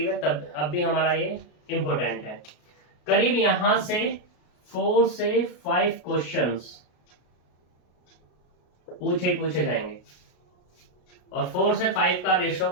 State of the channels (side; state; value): right; late; 33 ms